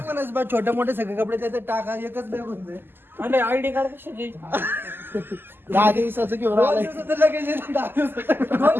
छोटे मोठे सगळे कपडे त्याचे टाका, एकच बॅग होते. आणि आयडी कार्ड कशाची. 10 दिवसाचं घेऊन आलाय. 2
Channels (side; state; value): left; late; 0.099 ms